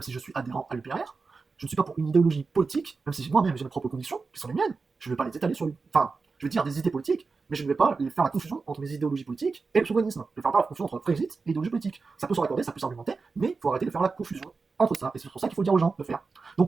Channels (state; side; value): quieter; left; 4.4 dB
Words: si je suis adhérent à l'UPR. Je ne suis pas pour une idéologie politique, même si moi-même j'ai mes propres convictions, qui sont les miennes. Je ne vais pas les étaler sur enfin, je vais dire des idées politiques, mais je ne vais pas faire la confusion entre mes idéologies politiques et le souverainisme. Je ne vais faire pas la confusion entre Brexit et idéologie politique. Ça peut se raccorder, ça peut s'argumenter, mais il faut arrêter de faire la confusion entre ça. Et c'est pour ça qu'il faut dire aux gens de faire.